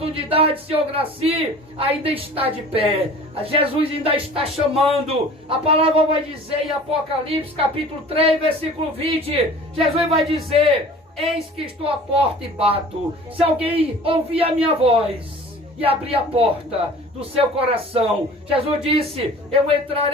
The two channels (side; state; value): both; normal; correlation 0.44